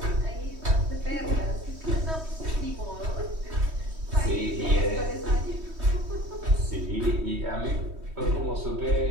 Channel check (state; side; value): late; left; 3.2 ms